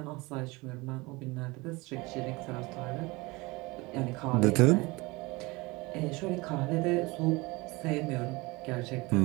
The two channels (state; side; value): quieter; left; 23.7 dB